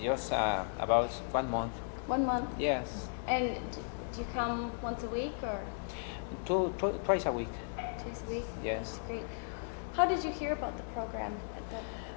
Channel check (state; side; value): silent; right; digital silence